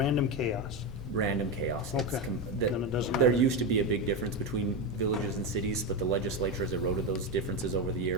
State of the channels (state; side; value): normal; both; correlation 0.13